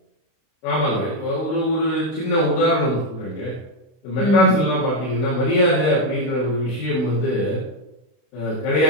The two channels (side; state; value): right; late; 32 ms